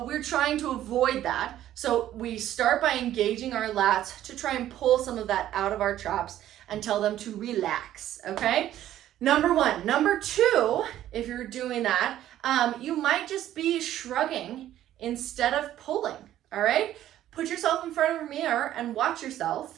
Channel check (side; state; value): left; quieter; 12.6 dB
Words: we're trying to avoid that. So we start by engaging our lats to try and pull some of that out of our traps and tell them to relax, okay? Number one. Number two, if you're doing that, you might just be shrugging instead of pulling, all right? Put yourself in front of a mirror and watch